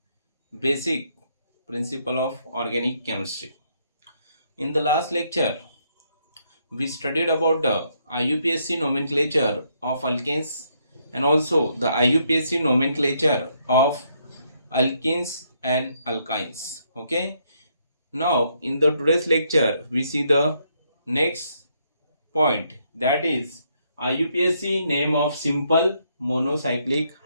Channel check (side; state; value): both; inverted; correlation -0.73